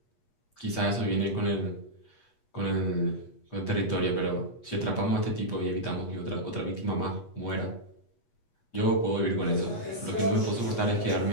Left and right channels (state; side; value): late; right; 8.4 ms